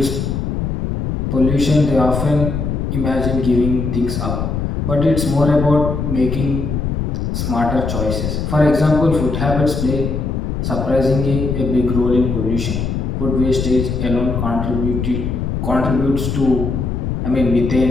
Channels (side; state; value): left; noise; rumble, 2 dB below the sound